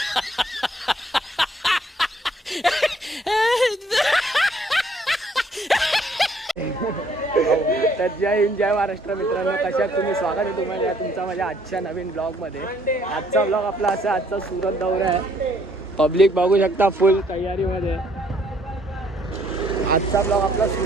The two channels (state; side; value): normal; both; correlation 0.64